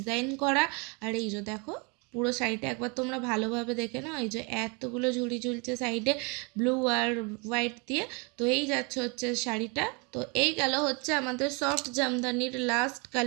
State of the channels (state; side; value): quieter; left; 31.3 dB